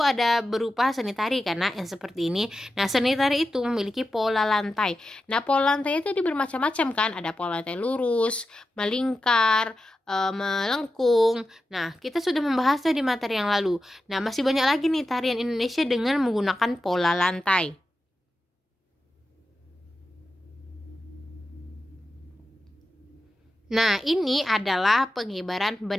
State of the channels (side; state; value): both; normal; correlation 0.91